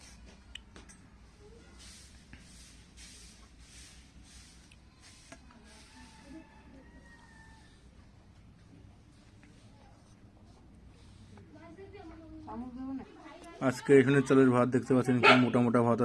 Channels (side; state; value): both; identical; correlation 1.00